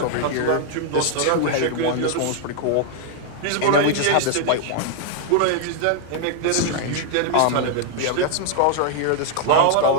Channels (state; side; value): different; both; correlation 0.00